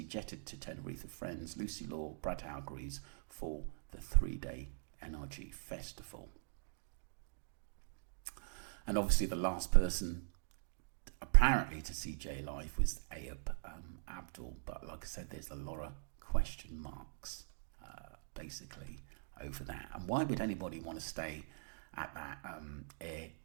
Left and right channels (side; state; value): left; silent; digital silence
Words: jetted to Tenerife with friends Lucy Law, Brad Hargreaves for the 3-day NRG festival. And obviously the last person apparently to see Jay live was Ayub Abdul, but like I said, there's a lot of question marks basically over that. And why would anybody want to stay at that